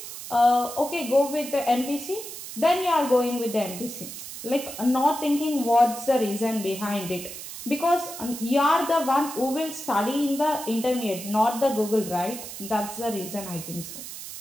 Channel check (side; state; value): right; noise; hiss, 11 dB below the sound